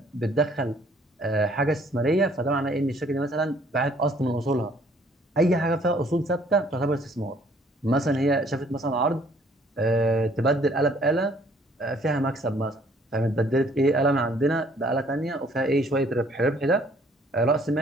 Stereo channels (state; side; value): normal; both; correlation 0.61